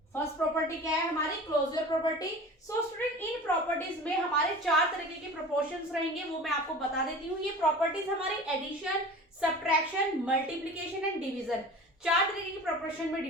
First property क्या है हमारी? Closure property. सो स्टूडेंट, इन प्रॉपर्टीज में हमारे 4 तरीके के प्रोपोर्शंस रहेंगे, वो मैं आपको बता देती हूँ। ये प्रॉपर्टीज हमारी addition, subtraction, multiplication and division, 4 तरीके की प्रोपोर्शन में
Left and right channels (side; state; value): both; normal; correlation 0.38